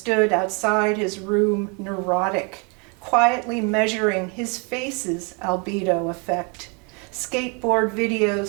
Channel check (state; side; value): quieter; left; 33.4 dB